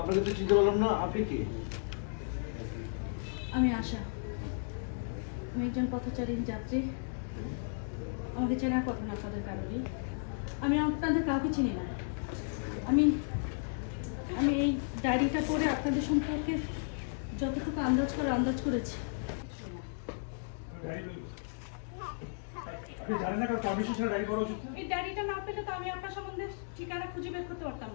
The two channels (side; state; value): right; silent; digital silence